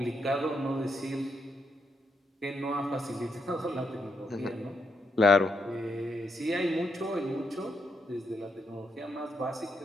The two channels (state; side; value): normal; both; correlation 0.80